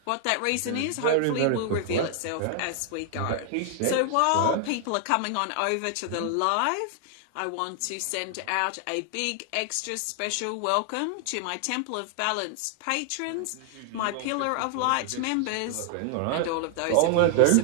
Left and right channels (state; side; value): different; both; correlation 0.00